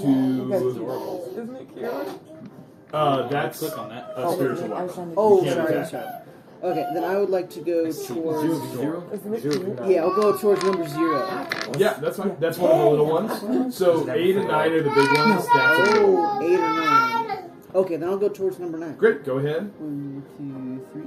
Isn't it cute? That's Click on that. a spiritual I was weapon. trying to Oh, You can't sorry, attack sorry. that. Okay, then I would like to go towards... Isn't it cute? Yeah, I'll go towards number 0. Yeah, that's fine. That's one of the little ones. So 8 and 9 are the big ones. That's a little one. Oh, 8 or 9. Okay, then I'll go towards number 9. Great, go ahead. 1,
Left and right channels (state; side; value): identical; both; correlation 1.00